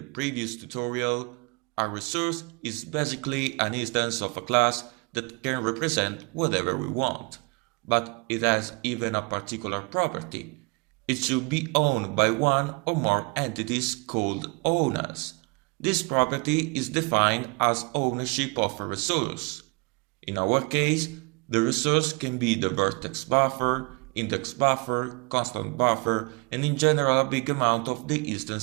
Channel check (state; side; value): quieter; left; 30.9 dB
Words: tutorial, a resource is basically an instance of a class that can represent whatever we want, but it has even a particular property. It should be owned by one or more entities called owners. This property is defined as ownership of a resource. In our case, the resource can be the vertex buffer, index buffer, constant buffer, and in general a big amount of the